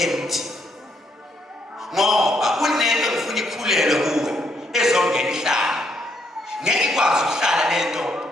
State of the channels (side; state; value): both; normal; correlation 0.73